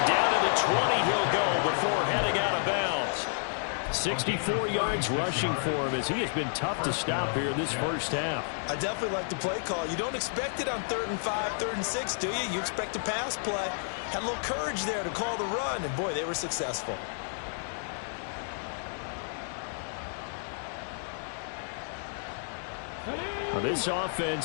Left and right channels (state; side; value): silent; right; digital silence